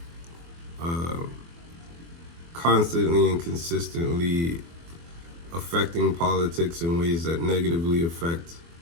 constantly and consistently affecting politics in ways that negatively affect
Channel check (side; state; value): left; late; 24 ms